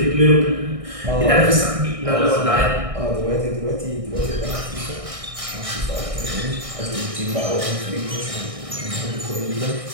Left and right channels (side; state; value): left; late; 1.6 ms